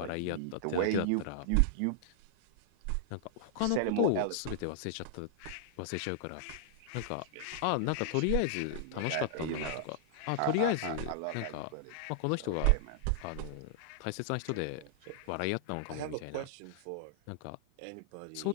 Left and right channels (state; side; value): different; both; correlation -0.01